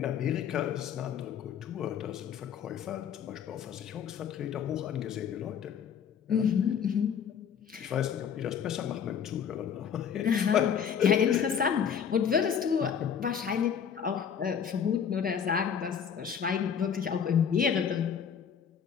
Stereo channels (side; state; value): right; quieter; 7.7 dB